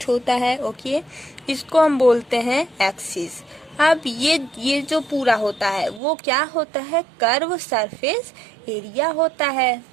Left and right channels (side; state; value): left; drops out; at 6.0 s